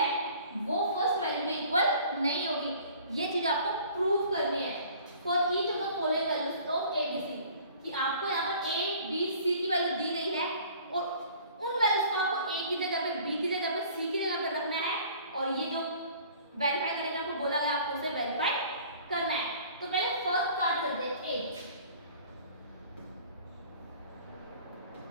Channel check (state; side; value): inverted; both; correlation -0.50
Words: वो फर्स्ट वैल्यू में इक्वल नहीं होगी। ये चीज आपको प्रूव करनी है for each of the following values of a b c, कि आपको यहाँ पर a b c की वैल्यू दी गई है और उन वैल्यूज को आपको a की जगह पे b की जगह पे c की जगह पे रखना है, और ये जो वेरीफाई करने का आपको बोला गया आपको उसे वेरीफाई करना है। तो पहले फर्स्ट स्टार्ट करते हैं a,